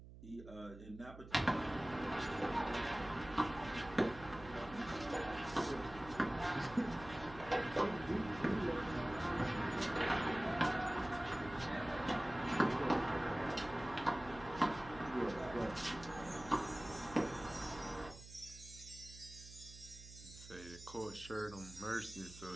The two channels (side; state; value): right; noise; hum, 16 dB below the sound